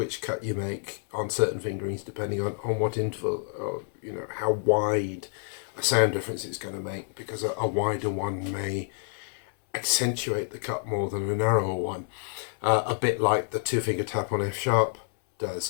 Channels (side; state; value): right; silent; 59 dB below the other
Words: cut you make on certain fingerings depending on what interval, or you know, how wide a sound difference it's going to make, because a wider one may accentuate the cut more than a narrower one, a bit like the 2-finger tap on F sharp